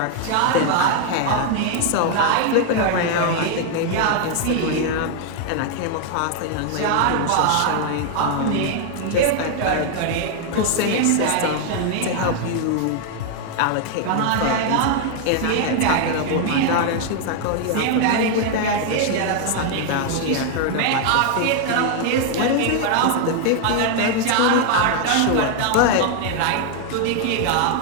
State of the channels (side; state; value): both; different; correlation 0.00